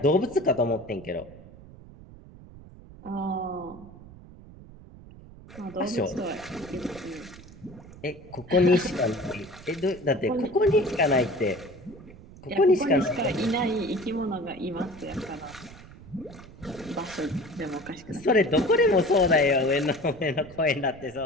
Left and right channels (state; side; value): noise; right; rumble, 19 dB below the sound